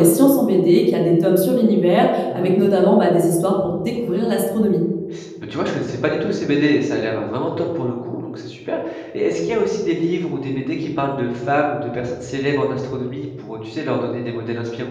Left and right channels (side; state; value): both; identical; correlation 1.00